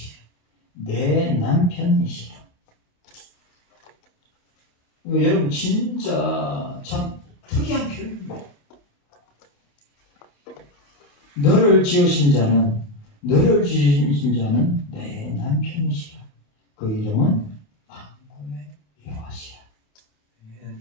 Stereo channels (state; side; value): late; right; 28 ms